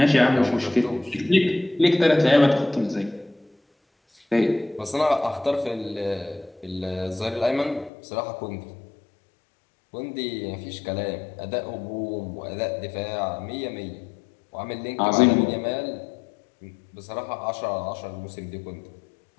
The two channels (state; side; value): drops out; right; at 7.9 s